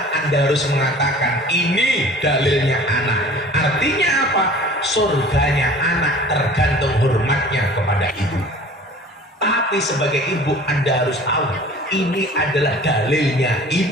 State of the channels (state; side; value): normal; both; correlation 0.45